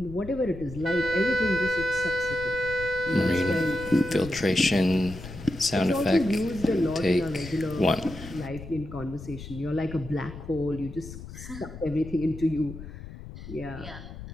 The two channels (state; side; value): noise; left; rumble, 13 dB below the sound